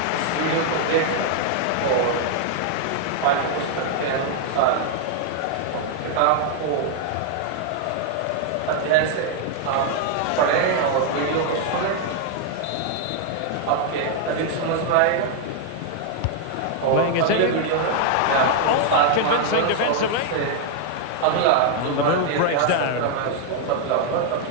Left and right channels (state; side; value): different; both; correlation 0.00